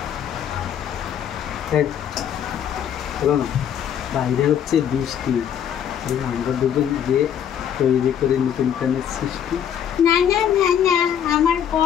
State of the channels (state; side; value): quieter; right; 9.2 dB